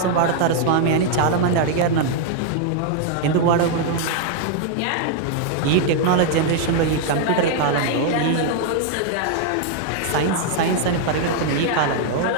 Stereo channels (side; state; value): both; different; correlation 0.00